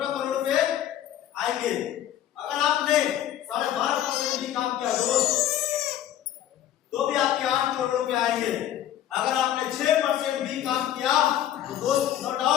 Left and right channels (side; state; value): right; quieter; 11.5 dB